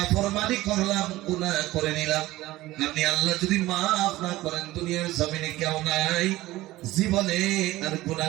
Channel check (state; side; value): quieter; left; 17.4 dB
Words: করলাম, গুনাহ করে নিলাম, আপনি আল্লাহ যদি মাফ না করেন, দুনিয়ার জমিনে কেউ নাই, জীবনে আর